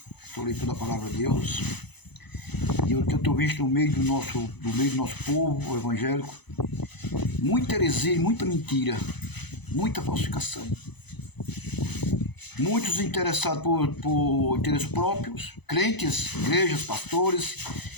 sou leitor da palavra de Deus. E eu tenho visto no meio do nosso povo evangélico muita heresia, muita mentira, muita falsificação. Muitos interessados por interesses próprios, crentes, igrejas, pastores,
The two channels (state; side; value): late; right; 0.99 ms